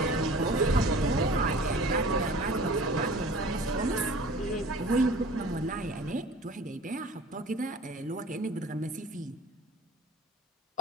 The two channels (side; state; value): both; normal; correlation 0.44